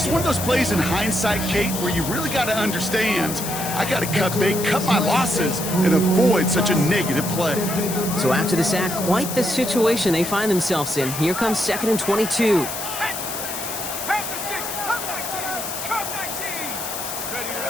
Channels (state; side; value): noise; left; hiss, 6 dB below the sound